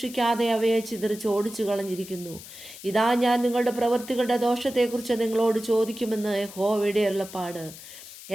അവയെ ചിതറിച്ച് ഓടിച്ചു കളഞ്ഞിരിക്കുന്നു. ഇതാ, ഞാൻ നിങ്ങളുടെ പ്രവൃത്തികളുടെ ദോഷത്തെക്കുറിച്ച് നിങ്ങളോട് ചോദിക്കുമെന്ന് യഹോവയുടെ അരുളപ്പാട്.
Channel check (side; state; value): left; noise; hiss, 15 dB below the sound